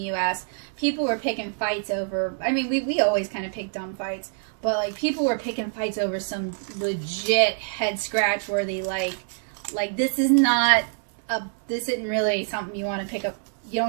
people were picking fights over, I mean, we always kind of pick dumb fights, but like people were picking fights over some legit head scratch worthy, like this is not, this isn't really something you want to pick up, you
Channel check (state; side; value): silent; left; 61 dB below the other